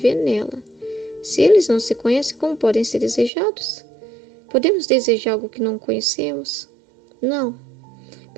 nela. Se eles não se conhecem, como podem ser desejados? Podemos desejar algo que não conhecemos? Não.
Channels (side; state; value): left; drops out; at 3.3 s